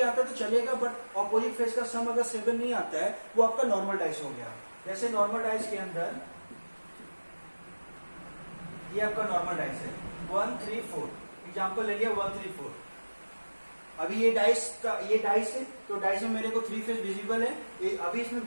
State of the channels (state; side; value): inverted; both; correlation -1.00